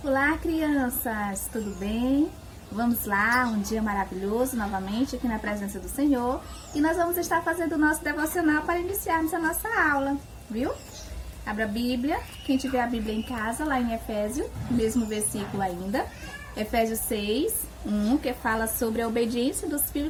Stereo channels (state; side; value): identical; both; correlation 1.00